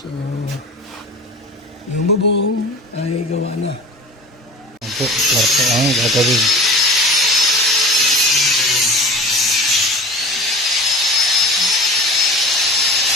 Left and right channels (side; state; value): both; normal; correlation 0.39